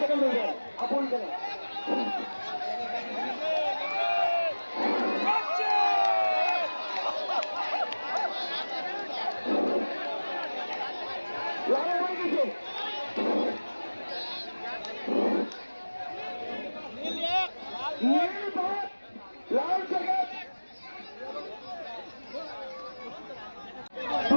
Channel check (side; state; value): both; inverted; correlation -1.00